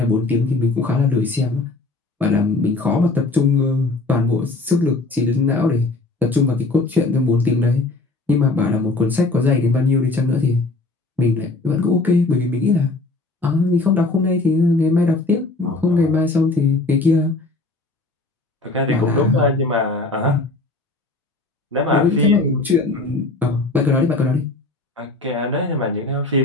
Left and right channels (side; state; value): right; quieter; 3.2 dB